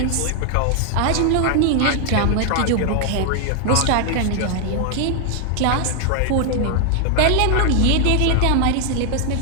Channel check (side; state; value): both; different; correlation 0.00